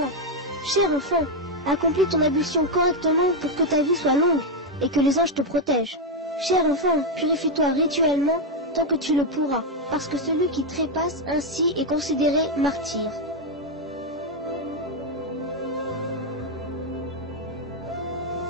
Cher enfant, accomplis ton ablution correctement pour que ta vie soit longue et que les anges te protègent. Cher enfant, purifie-toi rituellement tant que tu le pourras, parce que celui qui trépasse ainsi est considéré martyr. »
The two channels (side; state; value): both; normal; correlation 0.03